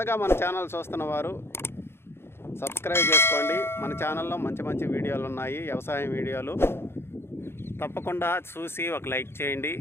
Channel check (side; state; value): right; late; 0.12 ms